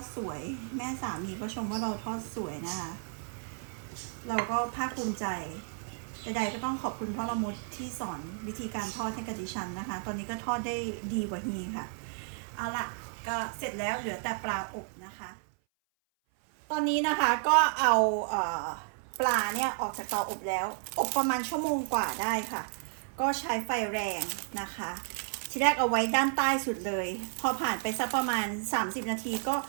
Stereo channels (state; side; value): silent; left; 56 dB below the other